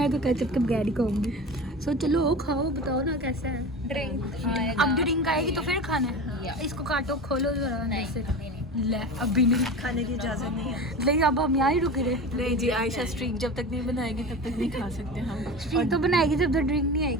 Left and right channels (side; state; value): both; normal; correlation 0.30